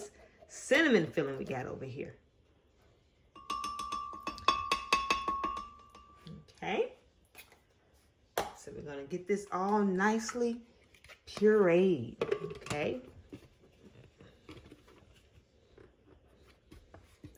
cinnamon filling we got over here. Okay. So we're gonna get this all nicely pureed. Okay.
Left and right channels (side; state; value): both; identical; correlation 1.00